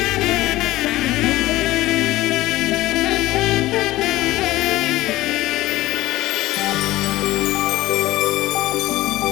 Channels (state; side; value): quieter; right; 17.3 dB